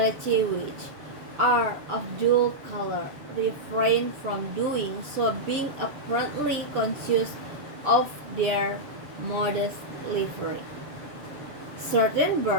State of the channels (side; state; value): left; late; 6.9 ms